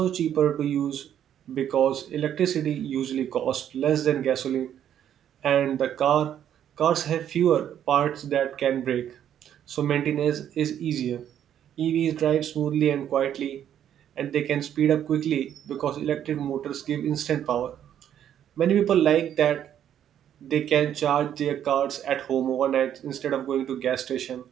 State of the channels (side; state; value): left; quieter; 10.1 dB